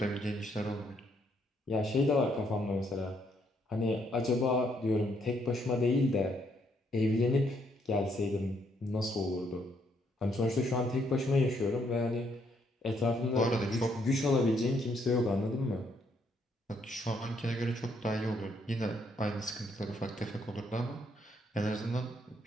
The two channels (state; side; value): normal; both; correlation 0.72